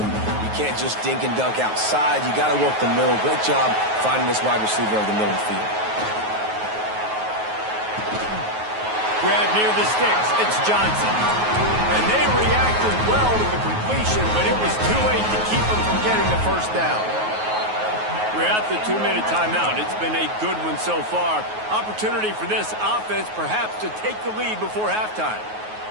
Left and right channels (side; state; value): left; late; 9.4 ms